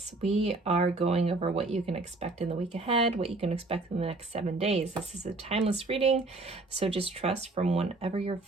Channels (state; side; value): quieter; left; 3.2 dB